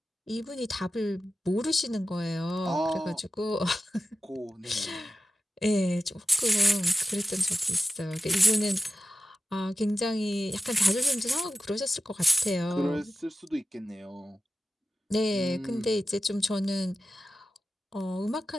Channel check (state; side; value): normal; both; correlation 0.94